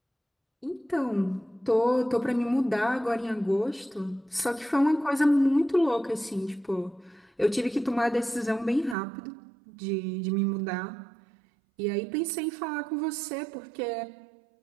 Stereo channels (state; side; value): drops out; left; at 9.0 s